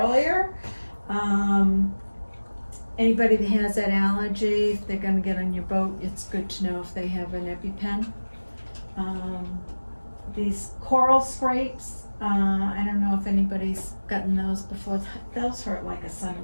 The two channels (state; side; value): inverted; both; correlation -1.00